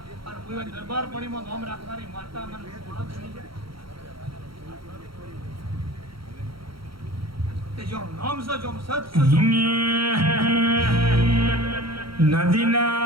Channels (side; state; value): left; late; 0.74 ms